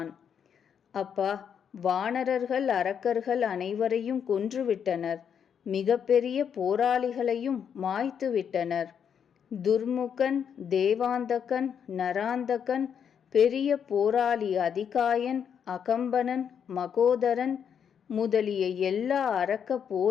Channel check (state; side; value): quieter; right; 7.8 dB